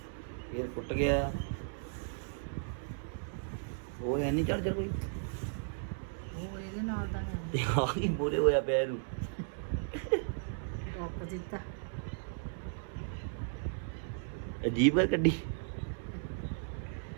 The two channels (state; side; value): silent; left; 54 dB below the other